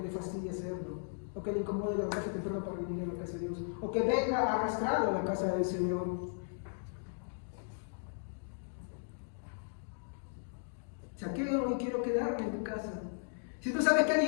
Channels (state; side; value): silent; right; digital silence